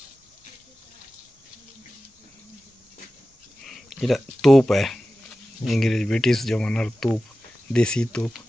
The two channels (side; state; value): both; normal; correlation 0.95